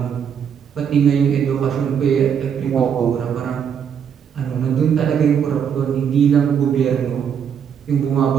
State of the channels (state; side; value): quieter; left; 7.8 dB